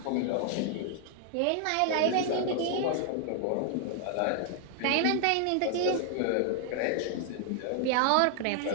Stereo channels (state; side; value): different; both; correlation 0.00